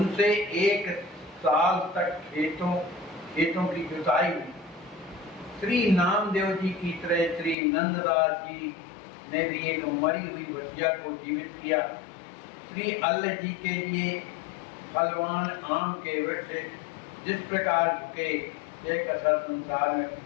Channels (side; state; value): right; drops out; at 7.6 s